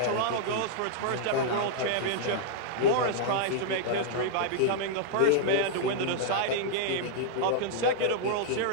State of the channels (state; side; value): different; both; correlation -0.01